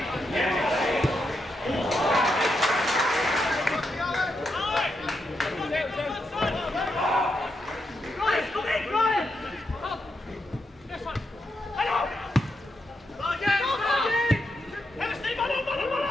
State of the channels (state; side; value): normal; both; correlation 0.83